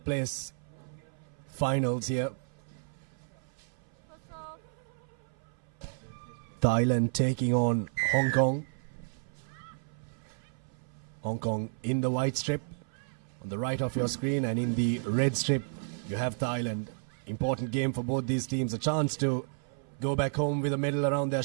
place finals here. Thailand taking on Hong Kong. Hong Kong in the white strip on the right of your screen, and in the red strip you have Thailand. Important game for both these teams, a chance to go back home with a medal around their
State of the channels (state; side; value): silent; left; 56 dB below the other